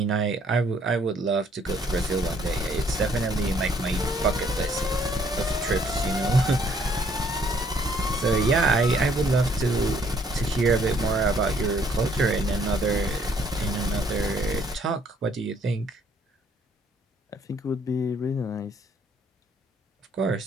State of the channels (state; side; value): normal; both; correlation 0.65